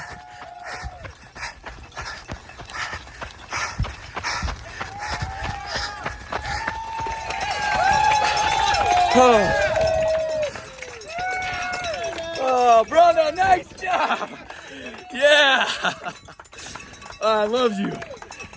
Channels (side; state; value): both; identical; correlation 1.00